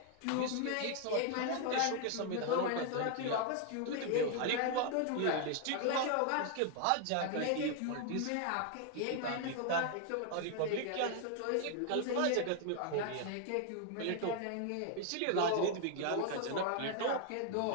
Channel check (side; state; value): both; different; correlation 0.00